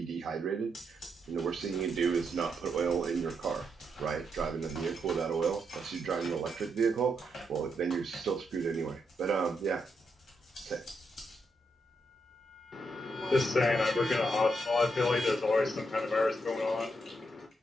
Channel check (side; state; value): both; normal; correlation 0.80